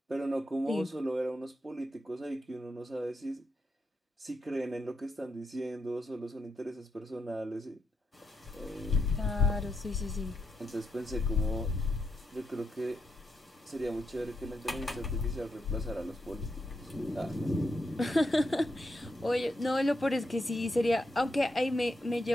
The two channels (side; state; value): both; normal; correlation 0.82